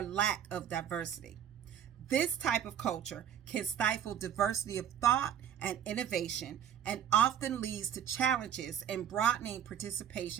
lack of diversity. This type of culture can stifle diversity of thought and innovation, and often leads to challenges in broadening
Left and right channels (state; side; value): quieter; left; 9.2 dB